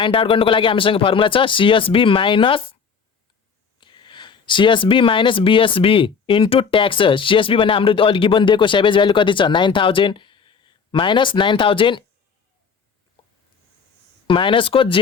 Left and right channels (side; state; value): right; quieter; 5.9 dB